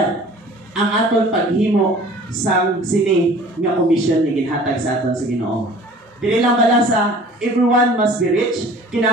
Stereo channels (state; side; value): normal; both; correlation 0.47